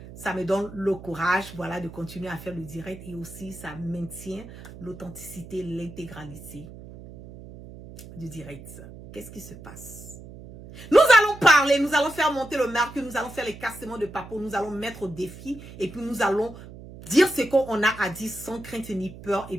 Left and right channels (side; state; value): right; noise; hum, 16 dB below the sound